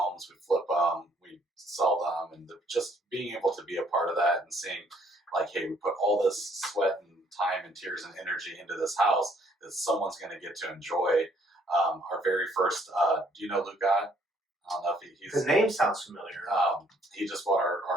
we flip them, we sell them, and just being able to be a part of that and seeing, like, hey, we put all this sweat and time and tears and energy into this house that someone's going to get to enjoy. Our very first, do you know Luke Gott? I don't know if he's... The name sounds familiar. He just bought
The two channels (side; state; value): both; normal; correlation 0.64